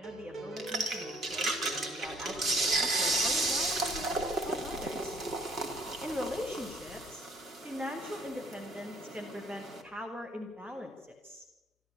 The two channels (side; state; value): both; normal; correlation 0.62